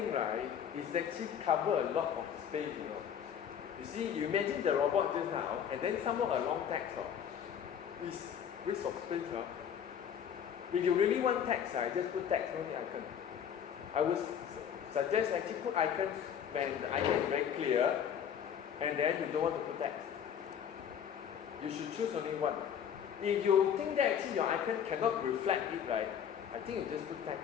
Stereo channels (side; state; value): right; quieter; 8.5 dB